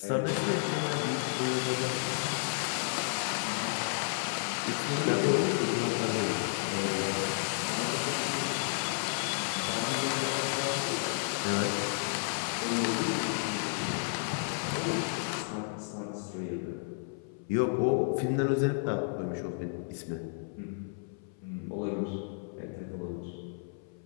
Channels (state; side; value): silent; right; 56 dB below the other